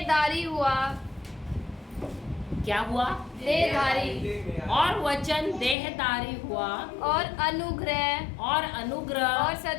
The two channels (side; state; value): right; drops out; at 5.8 s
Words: हुआ। क्या हुआ? देहधारी। और वचन देहधारी हुआ, और अनुग्रह और